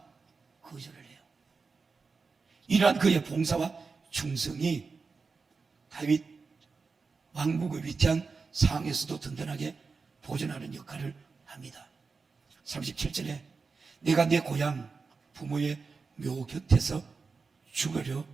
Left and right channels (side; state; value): left; quieter; 4.6 dB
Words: 거절을 해요. 이러한 그의 봉사와 충성이 다윗 왕국의 위태한 상황에서도 든든하게 보존하는 역할을 합니다. 37절에 내가 내 고향 부모의 묘 곁에서 죽으려